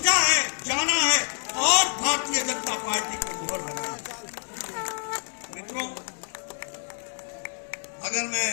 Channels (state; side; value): silent; right; digital silence